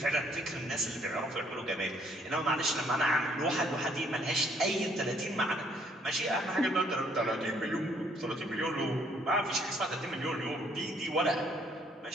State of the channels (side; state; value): both; normal; correlation 0.65